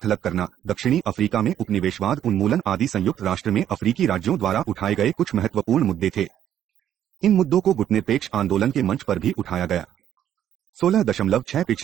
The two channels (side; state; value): left; quieter; 10.6 dB